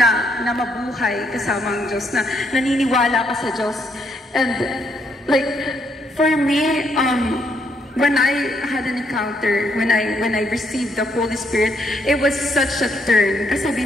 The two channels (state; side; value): normal; both; correlation 0.73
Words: mabuhay kasama ang Diyos, na naniniwala ka sa Diyos. And like, for me, when I had an encounter, when I received the Holy Spirit, it was such a turn. Kasi